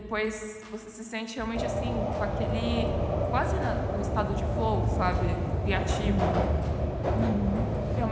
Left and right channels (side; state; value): both; identical; correlation 1.00